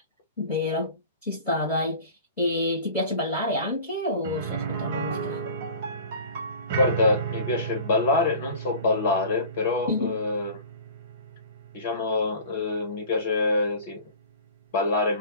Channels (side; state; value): both; inverted; correlation -0.42